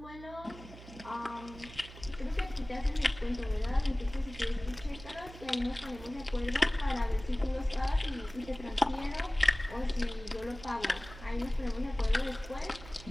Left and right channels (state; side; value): noise; right; hum, 16 dB below the sound